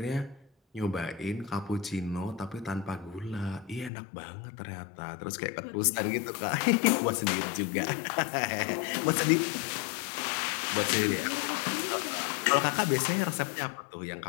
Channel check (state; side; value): drops out; right; at 3.9 s